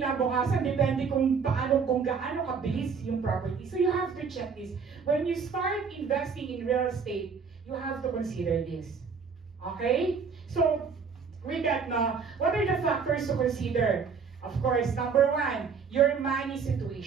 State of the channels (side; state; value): left; quieter; 5.7 dB